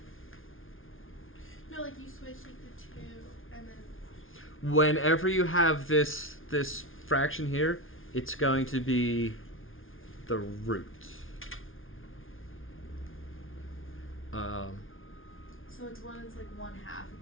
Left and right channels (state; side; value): late; right; 0.59 ms